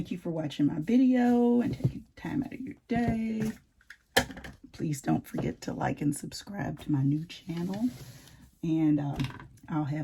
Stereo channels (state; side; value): identical; both; correlation 1.00